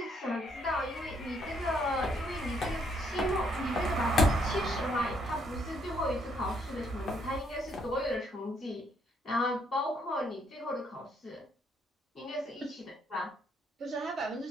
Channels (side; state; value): both; normal; correlation 0.71